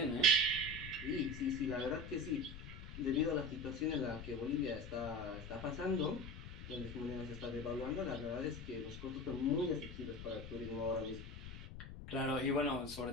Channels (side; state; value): left; noise; rumble, 11 dB below the sound